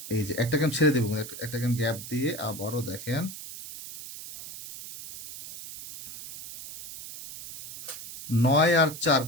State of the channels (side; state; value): right; noise; hiss, 12 dB below the sound